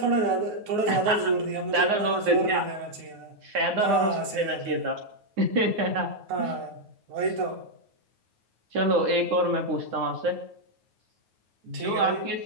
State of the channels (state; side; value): late; left; 9.4 ms